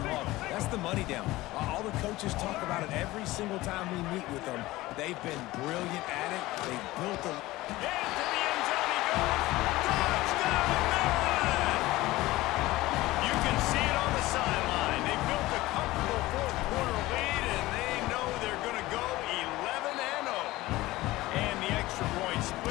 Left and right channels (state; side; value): quieter; right; 18.3 dB